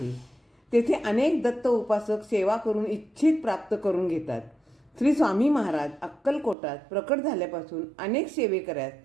तेथे अनेक दत्त उपासक सेवा करून इच्छित प्राप्त करून घेतात. श्री स्वामी महाराज अक्कलकोटात प्रकट झाल्यापासून अनेक सेवेकऱ्यास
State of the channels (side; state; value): left; drops out; at 6.6 s